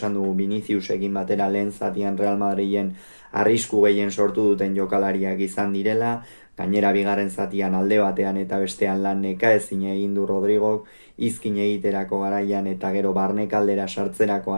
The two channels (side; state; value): both; inverted; correlation -1.00